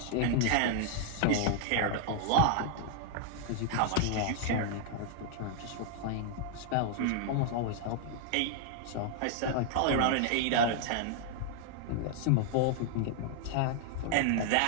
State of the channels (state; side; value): different; both; correlation -0.01